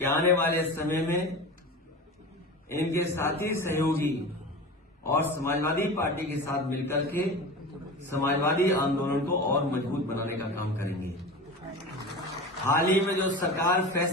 आने वाले समय में इनके साथी सहयोगी और समाजवादी पार्टी के साथ मिलकर के समाजवादी आंदोलन को और मजबूत बनाने का काम करेंगे। हाल ही में जो सरकार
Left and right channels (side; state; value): both; normal; correlation 0.31